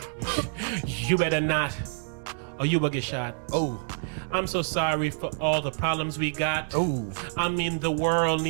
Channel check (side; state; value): left; silent; digital silence